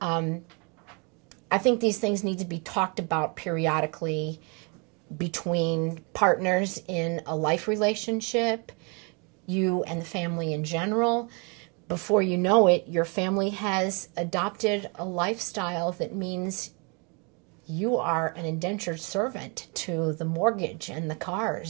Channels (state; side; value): quieter; left; 33.3 dB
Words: I think these things need to be talked about periodically between partners in a life relationship, you and the family in general. Before you know it, your family has adopted a lifestyle that means you are an indentured servant to the mortgage and the